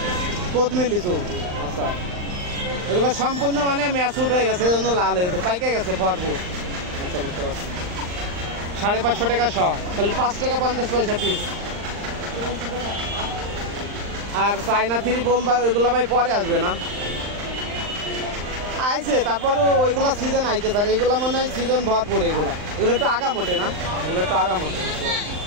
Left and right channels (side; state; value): left; late; 39 ms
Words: কোদমি লিচু। আচ্ছা, এগুলো সম্পূর্ণ মানে ম্যাচুট হয়ে গেছে, এই জন্য লাল হয়ে গেছে, পাইকে গেছে ভরপুর। আচ্ছা, বুঝতে পারছি। 550 টাকা শ, তাহলে 5 টাকা 50 পয়সা পিস। আর চায়না থ্রি বোম্বাই ওইগুলো ভাই পরে আসবে না? আইছে, তারপরও ওইগুলো সিজন আইছে স্যার, এইগুলো মনে হয় সিজন ভরপুর। এগুলো একটু আগা মোটে না, এগুলো একটু আগা মোটে।